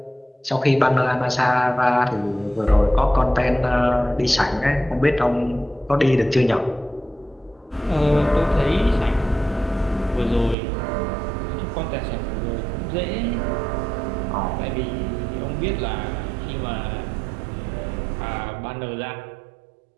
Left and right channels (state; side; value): drops out; left; at 10.6 s